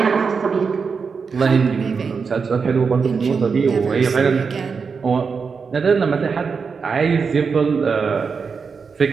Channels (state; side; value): quieter; left; 5.4 dB